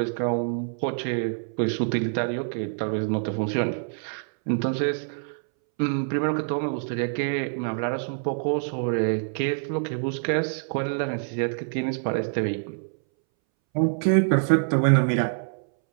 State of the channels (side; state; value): left; silent; 61 dB below the other